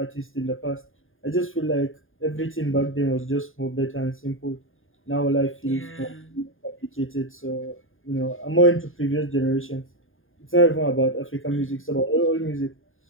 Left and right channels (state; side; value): late; right; 0.59 ms